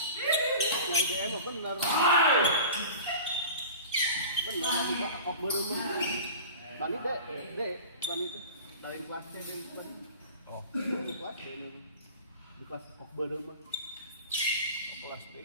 IDM benar. Benar lagi Pak kok berumah. Bani dek, bani itu dari kelasnya dari bani. Oh, di kelas di kelas kok berumah. Kelas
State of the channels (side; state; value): both; inverted; correlation -0.37